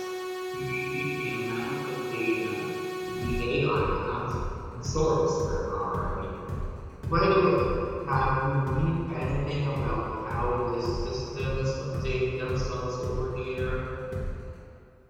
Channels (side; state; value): both; identical; correlation 1.00